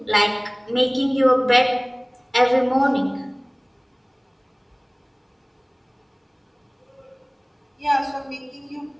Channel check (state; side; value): identical; both; correlation 1.00